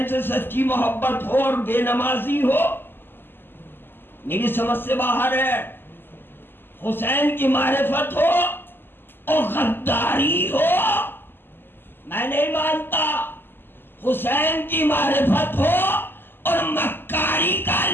سے سچی محبت ہو اور بے نمازی ہو، میری سمجھ سے باہر ہے۔ حسین کی معرفت ہو اور غداری ہو، میں نہیں مانتا۔ حسین کی معرفت ہو اور مکاری کا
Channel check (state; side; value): late; right; 0.099 ms